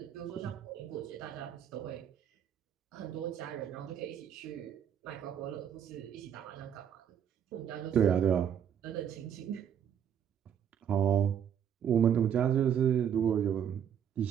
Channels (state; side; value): quieter; left; 8.8 dB